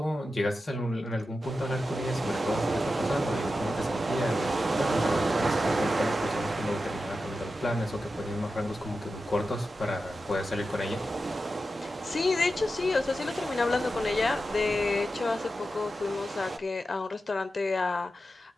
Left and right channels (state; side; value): normal; both; correlation 0.91